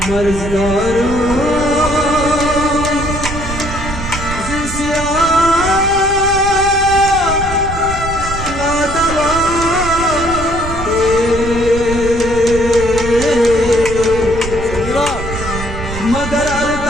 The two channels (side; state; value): right; noise; rumble, 8 dB below the sound